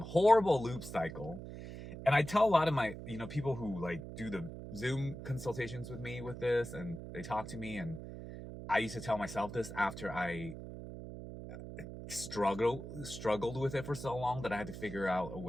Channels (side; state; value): right; noise; hum, 10 dB below the sound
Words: loop cycle. And I tell a lot of my, people who like do the Zoom consultations with me with this, and they talk to me, and I used to tell myself this after I struggled with it for so long that I had to figure out a